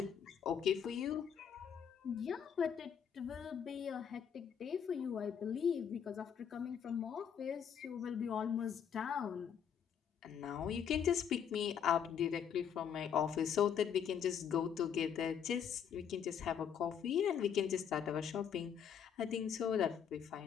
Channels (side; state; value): right; quieter; 8.0 dB